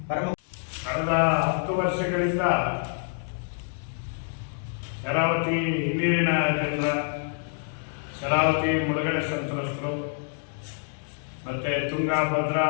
ಪರಮ ಕಳೆದ 10 ವರ್ಷಗಳಿಂದ ಶರಾವತಿ ಹಿನ್ನೀರಿನ ಜನರ, ಶರಾವತಿ ಮುಳುಗಡೆ ಸಂತ್ರಸ್ತರು, ಮತ್ತು ತುಂಗಾ, ಭದ್ರಾ,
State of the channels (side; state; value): right; silent; digital silence